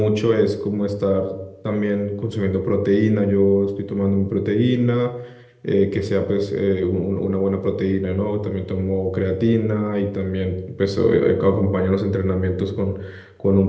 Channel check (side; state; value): both; identical; correlation 1.00